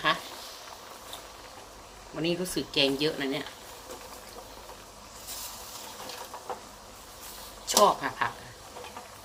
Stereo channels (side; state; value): both; identical; correlation 1.00